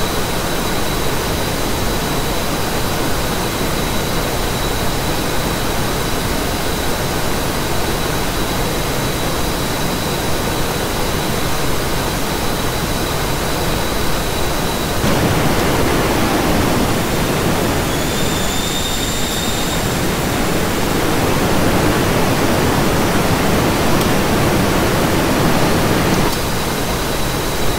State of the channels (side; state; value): both; identical; correlation 1.00